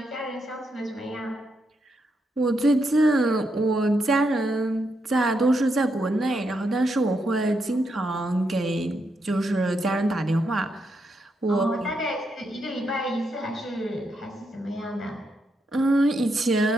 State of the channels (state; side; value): normal; both; correlation 0.81